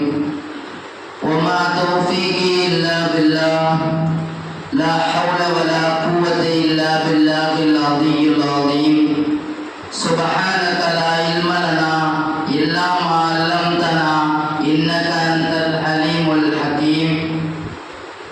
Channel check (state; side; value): identical; both; correlation 1.00